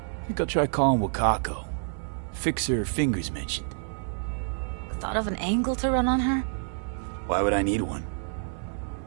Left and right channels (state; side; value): silent; left; digital silence